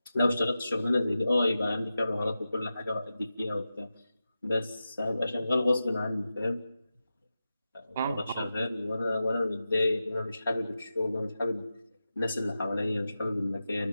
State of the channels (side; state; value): both; inverted; correlation -0.92